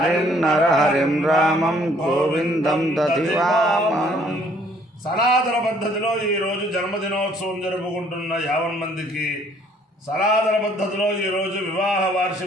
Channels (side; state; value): both; normal; correlation 0.62